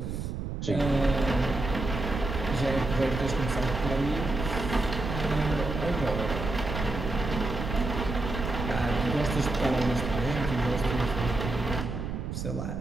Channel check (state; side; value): noise; right; rumble, 5 dB below the sound